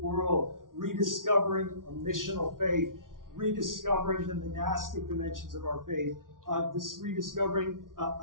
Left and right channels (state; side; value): late; left; 0.89 ms